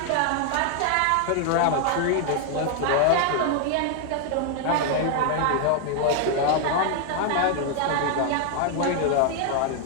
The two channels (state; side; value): different; both; correlation 0.00